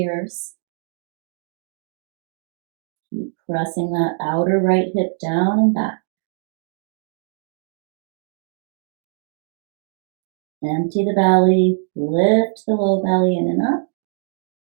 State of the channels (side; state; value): left; silent; digital silence